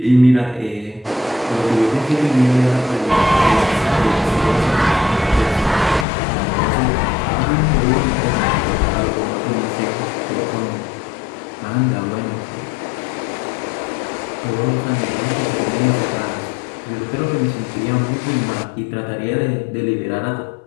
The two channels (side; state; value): right; drops out; at 6.1 s